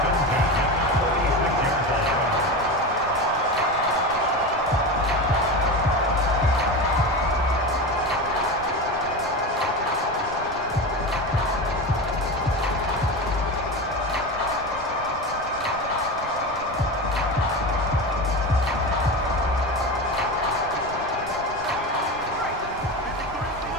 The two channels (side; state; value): right; noise; rumble, 16 dB below the sound